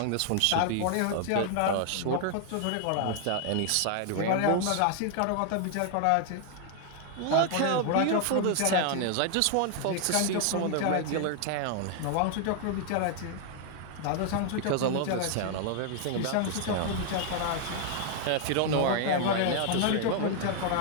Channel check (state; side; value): different; both; correlation 0.00